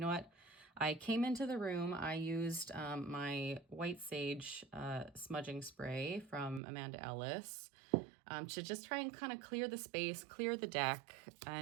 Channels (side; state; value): left; drops out; at 6.6 s